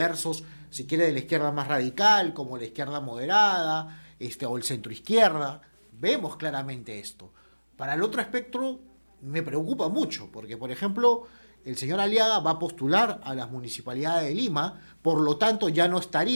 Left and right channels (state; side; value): inverted; both; correlation -1.00